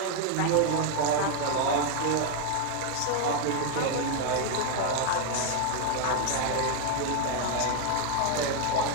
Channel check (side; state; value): both; different; correlation 0.00